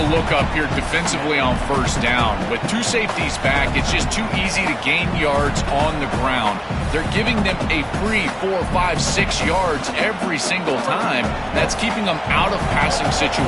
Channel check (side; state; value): both; identical; correlation 1.00